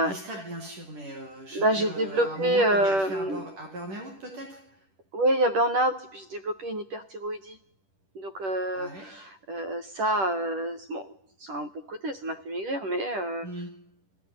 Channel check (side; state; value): left; late; 10 ms